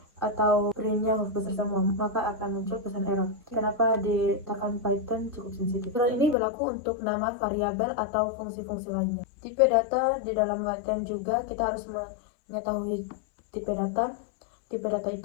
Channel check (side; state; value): right; drops out; at 6.4 s